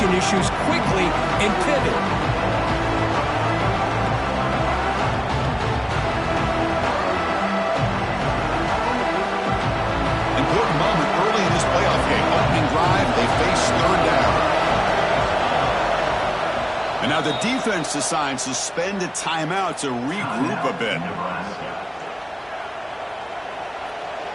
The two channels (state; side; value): identical; both; correlation 1.00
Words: issues quickly and pivot. Important moment early in this playoff game. Opening drive, they face 3rd down. And now the defense decides to spend a timeout to regroup a bit.